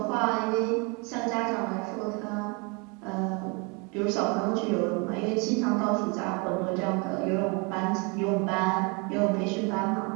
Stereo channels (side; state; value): left; quieter; 31.5 dB